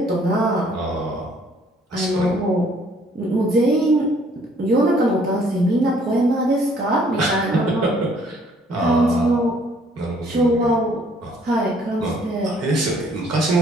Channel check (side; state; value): both; normal; correlation 0.61